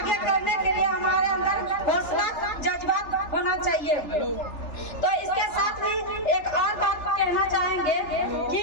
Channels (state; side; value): late; right; 3.4 ms